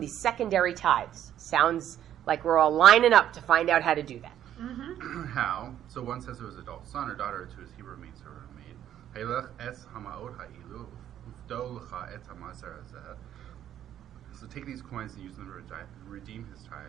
secondary tithes. Sounds like we're all lining up to find out how to do that. How? So one says to his adult son or daughter, to his Hebrew maid servant or maid, Haylech es hamaot ha'ilu, ufdo lecha et hamaser hazeh. So take these coins and use them to redeem his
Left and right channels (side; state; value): left; quieter; 11.0 dB